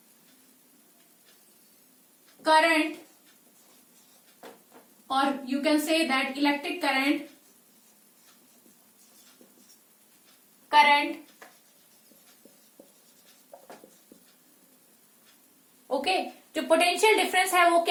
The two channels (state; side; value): identical; both; correlation 1.00